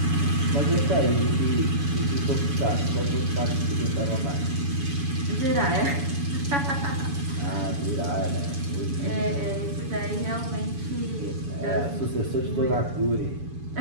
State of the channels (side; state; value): left; late; 7.1 ms